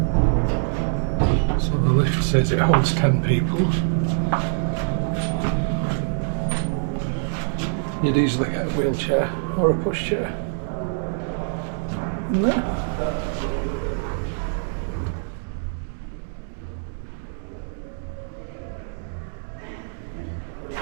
So the lift says it holds 10 people. You'd easily get a wheelchair or a pushchair in there.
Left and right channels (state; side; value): silent; left; digital silence